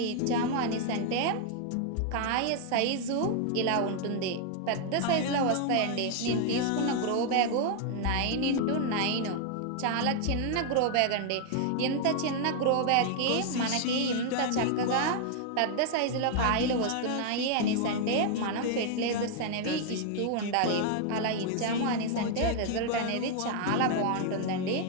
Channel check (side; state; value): both; different; correlation 0.00